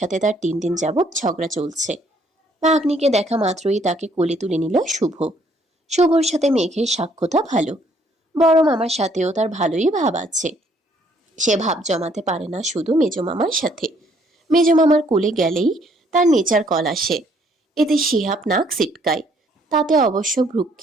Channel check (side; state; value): both; normal; correlation 0.65